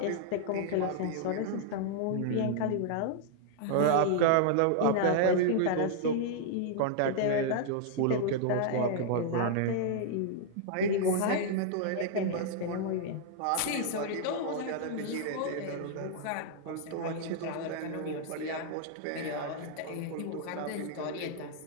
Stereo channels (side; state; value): both; different; correlation -0.01